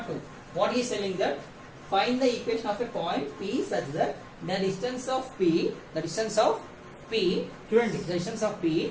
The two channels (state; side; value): identical; both; correlation 1.00